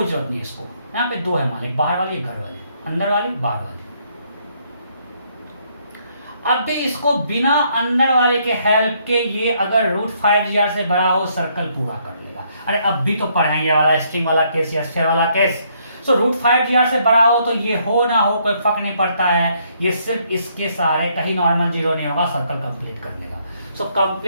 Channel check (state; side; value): inverted; both; correlation -0.70